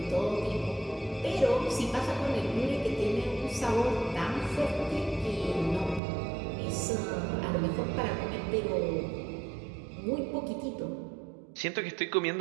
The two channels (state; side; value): drops out; left; at 6.0 s